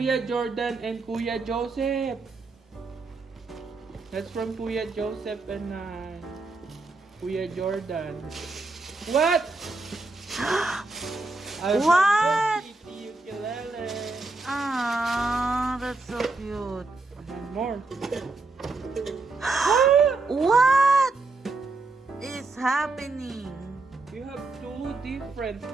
Jordan and Kuya Joseph. That's from Kuya Joseph and Kuya Jordan. What? What? Kitty ukulele. Ah, that's so cute. And more. What is happening? You have two different.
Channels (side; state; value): left; quieter; 3.5 dB